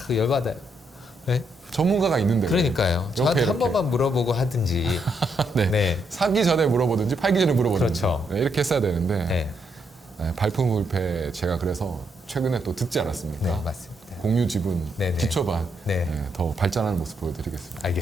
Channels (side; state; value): both; normal; correlation 0.77